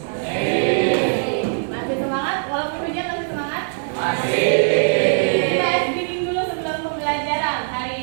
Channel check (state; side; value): silent; left; 65 dB below the other